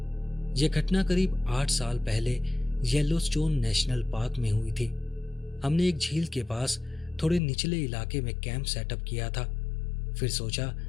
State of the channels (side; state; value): right; drops out; at 7.4 s